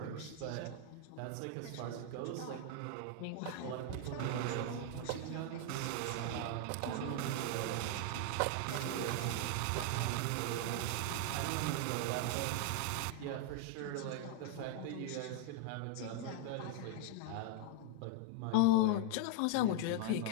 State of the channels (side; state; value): both; different; correlation 0.00